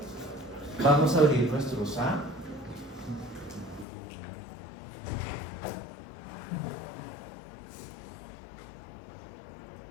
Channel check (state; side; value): drops out; right; at 3.9 s